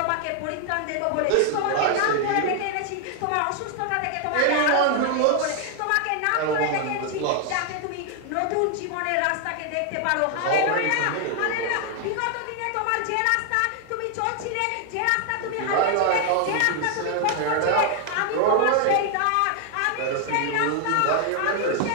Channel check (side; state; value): both; different; correlation 0.00